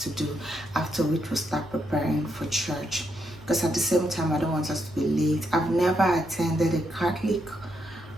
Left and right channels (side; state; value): both; normal; correlation 0.79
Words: do, after which we'll start preparing for church. Because at the same time, I don't want us to be late. I've never attended a Catholic